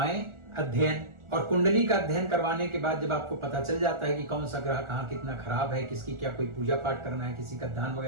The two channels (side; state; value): left; late; 1.4 ms